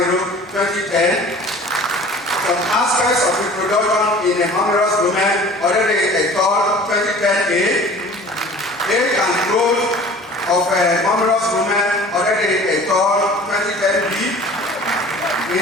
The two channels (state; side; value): normal; both; correlation 0.45